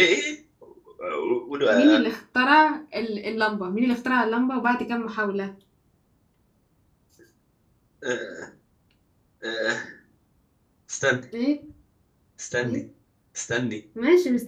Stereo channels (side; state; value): both; identical; correlation 1.00